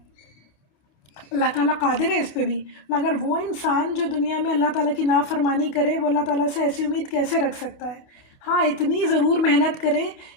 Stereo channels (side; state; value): right; late; 28 ms